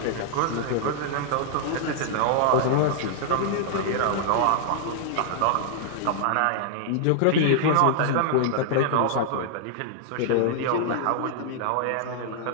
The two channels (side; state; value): both; different; correlation -0.01